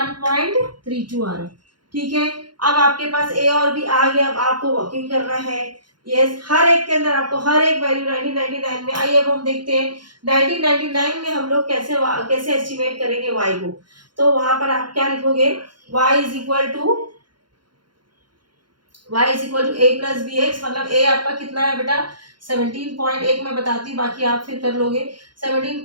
आ रहा है। ठीक है, अब आपके पास ए और बी आ गया, अब आपको वर्किंग करना है। यस, हर एक के अंदर आपको हर एक वैल्यू 1999 में। आइए अब हम देखते हैं 1999 में हम लोग कैसे एस्टिमेट करेंगे y को। तो वहां पर आप क्या लिखोगे, y is equal to a plus B X, मतलब a आपका कितना है बेटा 17.1 मैं बताती हूँ, बाकी आप फिर कर लोगे।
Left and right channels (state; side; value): late; left; 0.71 ms